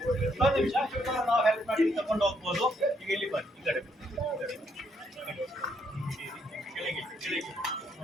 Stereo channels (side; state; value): both; normal; correlation 0.73